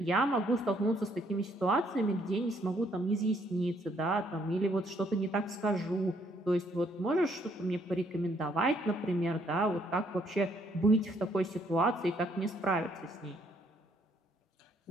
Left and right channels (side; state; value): both; normal; correlation 0.68